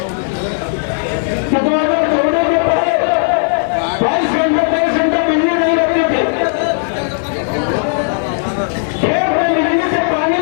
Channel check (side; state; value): right; silent; 61 dB below the other